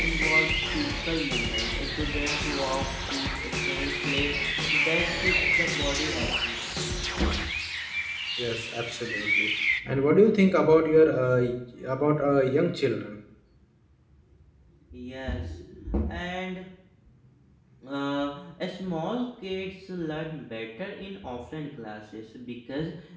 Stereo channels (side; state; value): both; identical; correlation 1.00